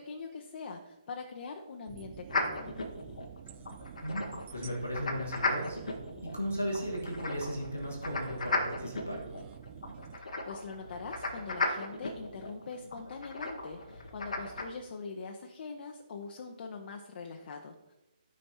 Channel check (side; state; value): both; inverted; correlation -0.65